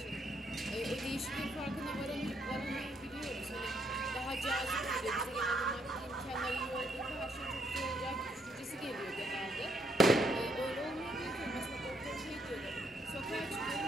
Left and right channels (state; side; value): normal; both; correlation 0.73